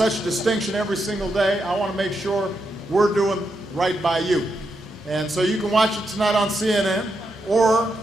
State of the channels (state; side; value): normal; both; correlation 0.83